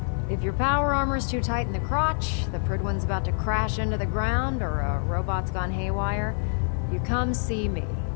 If your power armor's too tight in the crotch, the Prt2's about to crash into the ground, or a robot's gone haywire, you come see me.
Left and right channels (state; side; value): silent; right; 60 dB below the other